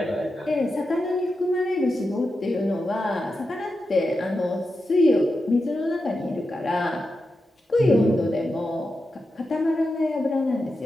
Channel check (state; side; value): normal; both; correlation 0.89